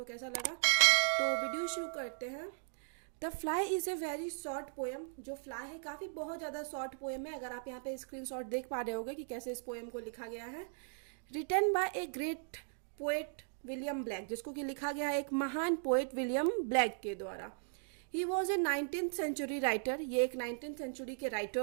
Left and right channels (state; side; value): silent; left; digital silence